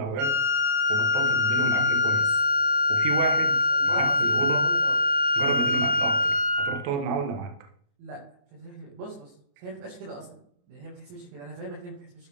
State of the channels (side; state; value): left; late; 28 ms